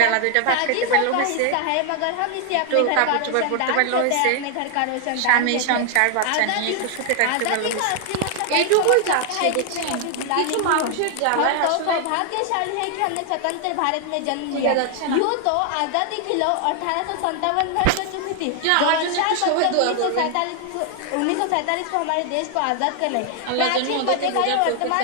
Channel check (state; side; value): different; both; correlation 0.00